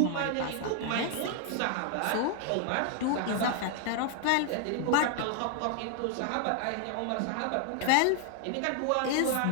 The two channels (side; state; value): both; different; correlation 0.00